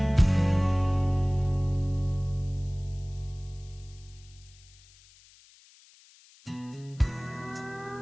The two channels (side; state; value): left; noise; hiss, 26 dB below the sound